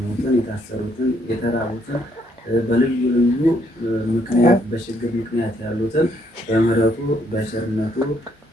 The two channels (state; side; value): normal; both; correlation 0.71